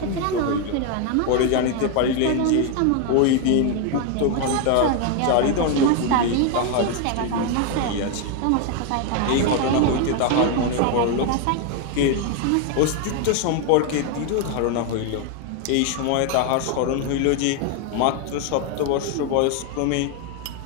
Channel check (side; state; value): both; different; correlation 0.01